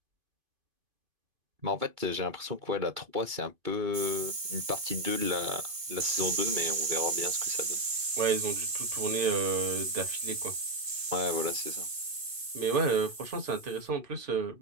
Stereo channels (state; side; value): late; left; 2.5 ms